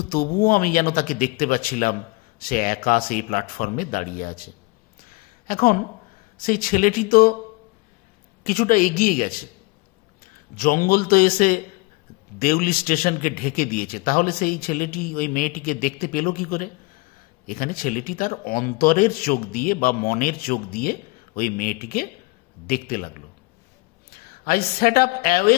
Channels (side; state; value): right; quieter; 24.7 dB